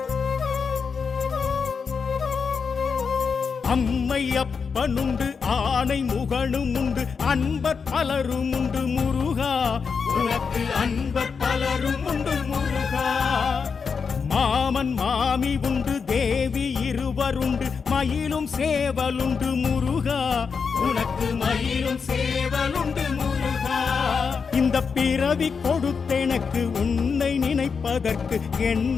அம்மை அப்பனுண்டு ஆனை முகனும் உண்டு அன்பர் பலரும் உண்டு முருகா உனக்கு அன்பர் பலரும் உண்டு முருகா மாமன் மாமி உண்டு தேவி இருவருண்டு மயிலும் சேவலுண்டு முருகா உனக்கு மயிலும் சேவலுண்டு முருகா இந்த பிறவி கொடுத்தெனக்கு உன்னை நினைப்பதற்கு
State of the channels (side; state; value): right; quieter; 5.6 dB